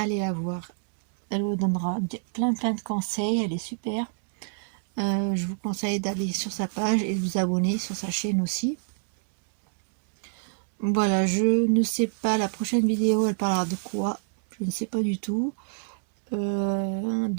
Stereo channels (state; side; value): silent; left; digital silence